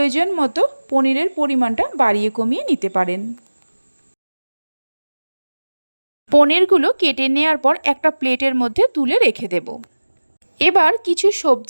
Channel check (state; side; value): inverted; both; correlation -1.00